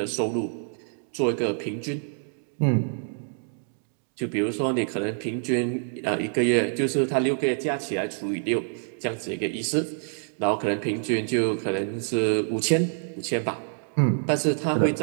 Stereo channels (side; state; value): left; silent; digital silence